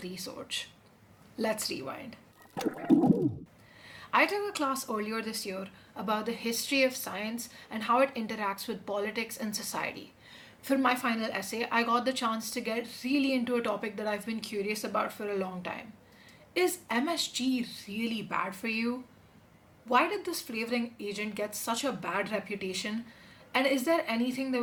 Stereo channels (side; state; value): both; identical; correlation 1.00